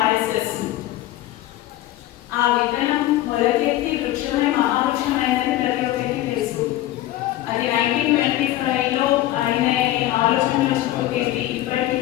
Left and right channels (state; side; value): quieter; right; 14.8 dB